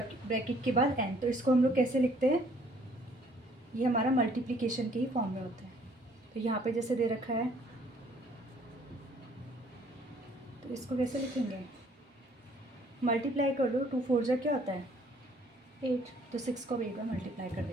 के बाद एन, तो इसको हम लोग कैसे लिखते हैं, ये हमारा मल्टीप्लिकेशन के ही फॉर्म में होता है। तो यहाँ पे जैसे दे रखा है तो इसको कैसे लिखेंगे, मल्टीप्लाई कर लो, 2 4 जा क्या होता है 8, तो 6 को 8 बार मल्टीप्लाई कर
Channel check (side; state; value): both; normal; correlation 0.61